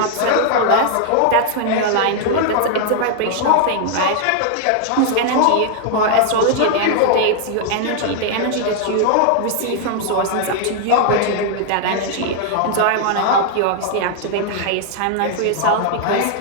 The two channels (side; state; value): both; different; correlation 0.00